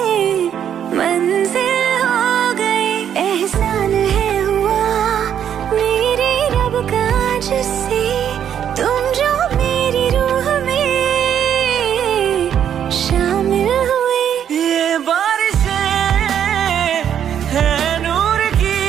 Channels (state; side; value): quieter; left; 9.2 dB